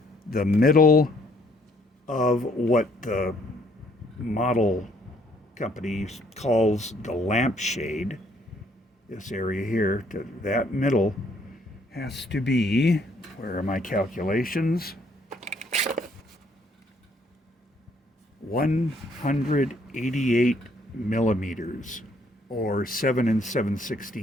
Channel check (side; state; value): both; normal; correlation 0.66